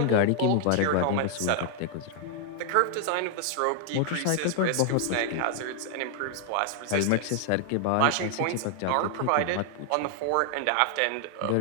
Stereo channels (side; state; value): both; different; correlation 0.00